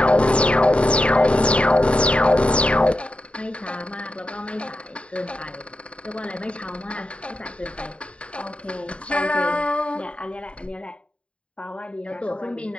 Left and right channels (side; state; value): right; late; 0.058 ms